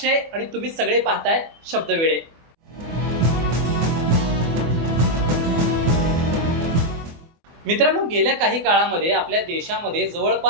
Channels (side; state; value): left; late; 24 ms